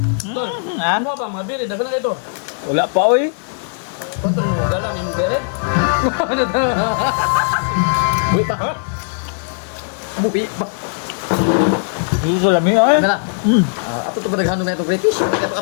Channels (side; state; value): right; silent; digital silence